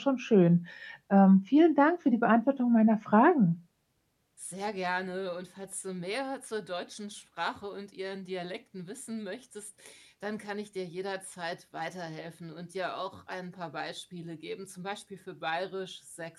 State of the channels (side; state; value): both; identical; correlation 1.00